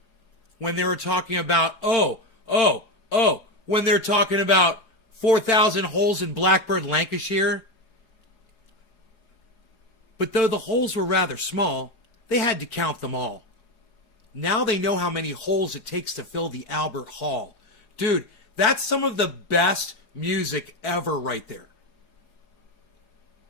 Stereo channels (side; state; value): right; late; 4.8 ms